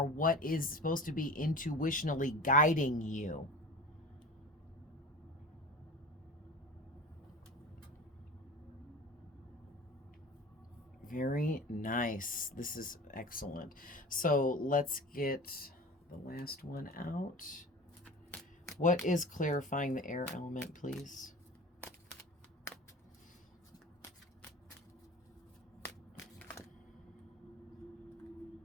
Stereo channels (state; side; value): normal; both; correlation 0.36